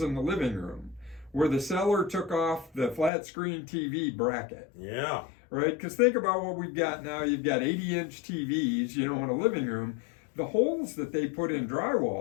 in the living room where the seller took off the flat screen TV bracket. Yeah. Right? Because think about what we've got now. You've got 80-inch TVs, in a living room. The holes that they put in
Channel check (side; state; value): right; drops out; at 3.1 s